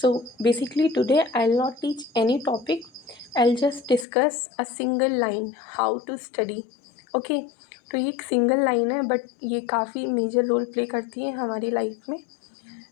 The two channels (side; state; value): right; drops out; at 4.0 s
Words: basically today I'll not teach any topic. I'll just discuss a single line how to study. Okay, तो ये एक single line है but ये काफ़ी major role play करती है हमारी life में।